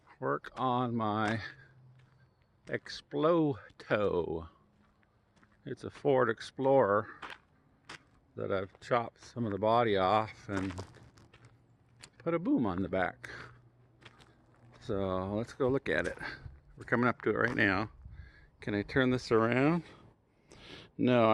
work on my Exploto. It's a Ford Explorer that I've chopped some of the body off and put a boom on the back. So let's go look at it. We're coming up to it right now. Can I turn this around? No,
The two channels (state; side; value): identical; both; correlation 1.00